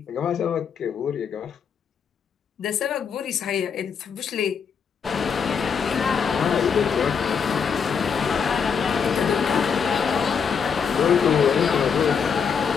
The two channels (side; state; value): right; quieter; 6.5 dB